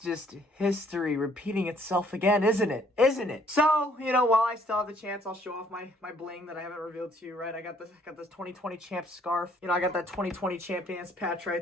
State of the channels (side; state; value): both; normal; correlation 0.63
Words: history repeating itself again, isn't it? Isn't it? So, while I still have the chance, I'll show off my bling that I haven't revealed to you, right? I got this 2020 champ scarf. I got that 2020 champions patch